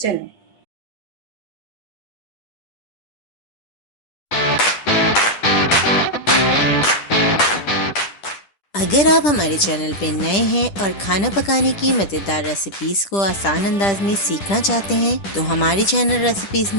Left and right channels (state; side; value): late; right; 10 ms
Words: अगर आप हमारे चैनल पे नए हैं और खाना पकाने की मज़ेदार रेसिपीज़ को आसान अंदाज में सीखना चाहते हैं तो हमारे चैनल रेसिपीज़